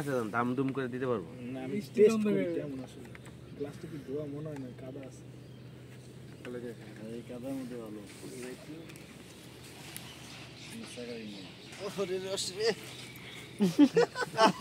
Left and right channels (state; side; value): identical; both; correlation 1.00